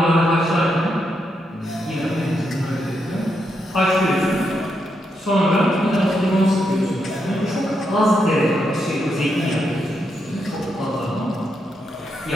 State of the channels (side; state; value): both; normal; correlation 0.82